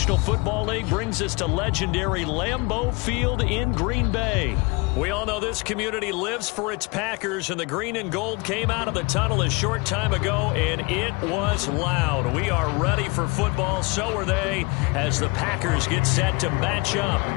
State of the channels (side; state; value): right; quieter; 27.9 dB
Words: Football League brings us to legendary Lambeau Field in Green Bay. We all know this community lives for its Packers, and the green and gold came out of the tunnel a short time ago, and it was loud. We are ready for football, so are they, as the Packers get set to match up